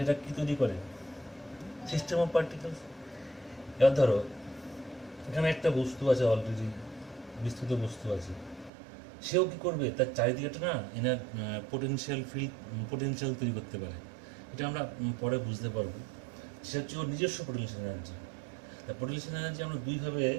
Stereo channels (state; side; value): drops out; left; at 8.7 s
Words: এটা কী তৈরি করে? System of particles. এবার ধরো এখানে একটা বস্তু আছে, অলরেডি বিস্তৃত বস্তু আছে, সেও কী করবে, তার চারিদিকেটা না এনার পোটেনশিয়াল তৈরি করতে পারে। এটা আমরা পরে বুঝতে পারবো। সেটা হচ্ছে ওর নিজস্ব পোটেনশিয়াল এনার্জি। তা পোটেনশিয়াল এনার্জি আমরা দুইভাবে